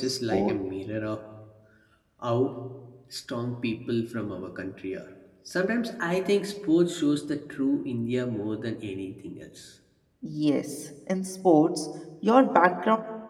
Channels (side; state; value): both; identical; correlation 1.00